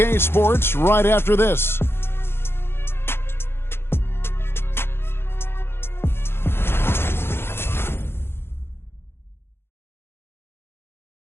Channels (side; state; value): right; late; 0.11 ms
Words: Sports right after this.